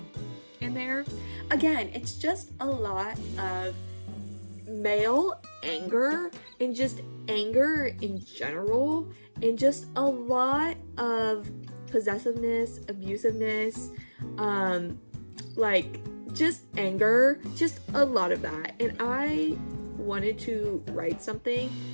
in there. Again, it's just a lot of male anger and just anger in general, and just a lot of possessiveness, abusiveness, like just anger, just a lot of that. And I wanted to write something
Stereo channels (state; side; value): inverted; both; correlation -1.00